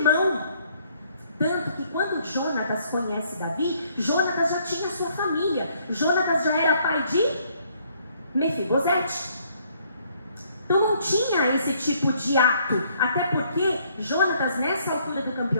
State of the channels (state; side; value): inverted; both; correlation -0.66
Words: Tanto que quando Jonatas conhece Davi, Jonatas já tinha sua família. Jonatas já era pai de Mefibosete. Então não tinha esse tipo de ato. Até porque Jonatas, nessa altura do